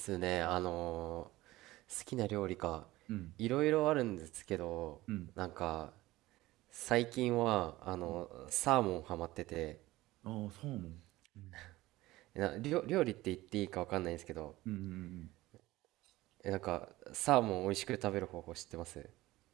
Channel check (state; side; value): quieter; left; 17.9 dB